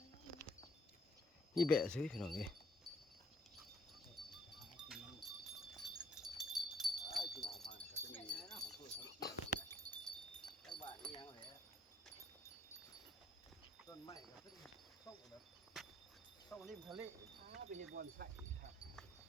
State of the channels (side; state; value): both; normal; correlation 0.63